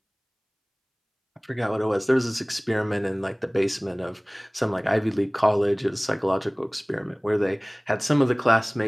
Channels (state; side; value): identical; both; correlation 1.00